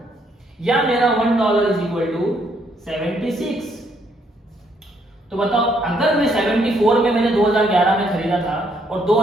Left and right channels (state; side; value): normal; both; correlation 0.70